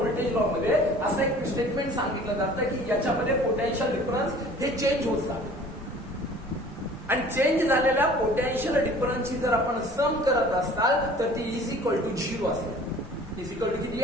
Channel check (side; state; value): both; normal; correlation 0.48